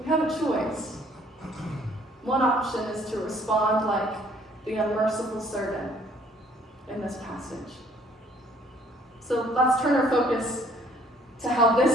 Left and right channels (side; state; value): both; normal; correlation 0.60